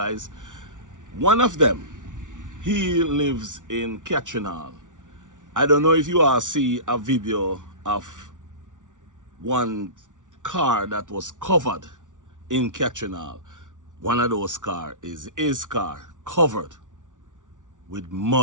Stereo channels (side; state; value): left; late; 0.87 ms